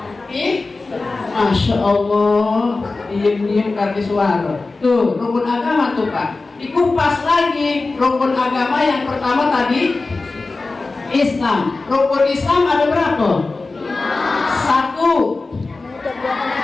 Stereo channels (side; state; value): right; quieter; 3.6 dB